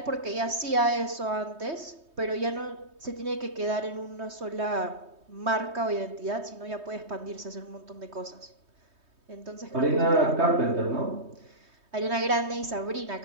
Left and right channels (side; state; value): left; late; 3.2 ms